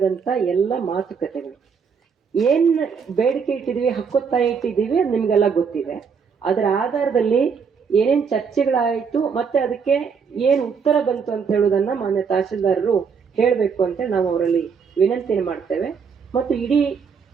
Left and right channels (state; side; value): quieter; left; 6.1 dB